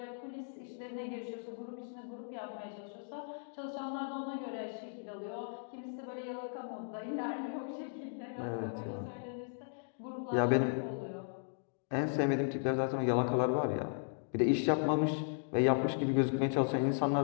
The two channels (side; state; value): right; silent; digital silence